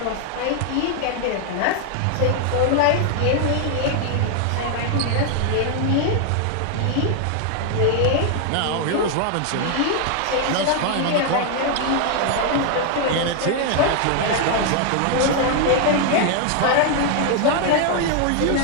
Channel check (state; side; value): different; both; correlation 0.00